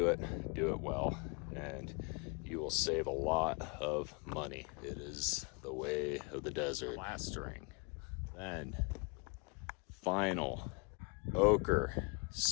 it well, and you will save a lot of money. It is the way of the desert. Plastering. Then, final ochre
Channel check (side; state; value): right; quieter; 32.1 dB